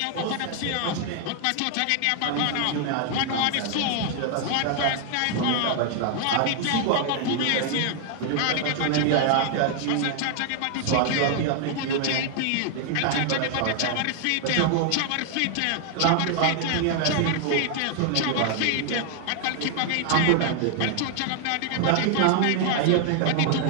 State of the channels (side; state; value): both; different; correlation 0.00